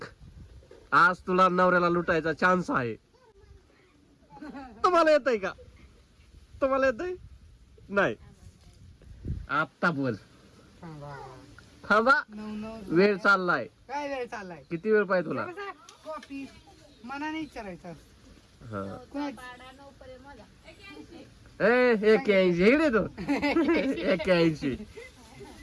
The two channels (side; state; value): both; identical; correlation 1.00